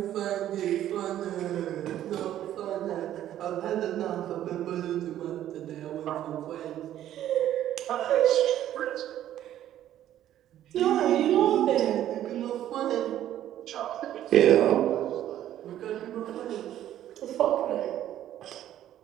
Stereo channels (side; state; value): left; quieter; 12.0 dB